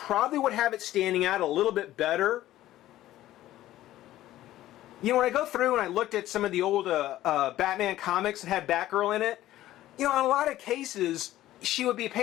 would have it standing out a little bit better. You know, when I go through and I looked at some of the old Batman comics that had Batgirl in it, you know, in a lot of cases, she would be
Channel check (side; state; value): right; quieter; 14.4 dB